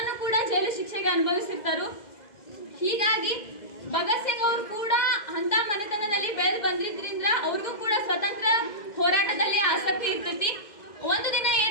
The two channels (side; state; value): right; late; 2.0 ms